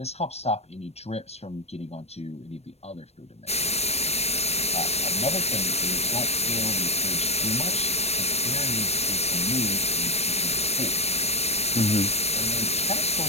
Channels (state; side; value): late; right; 0.31 ms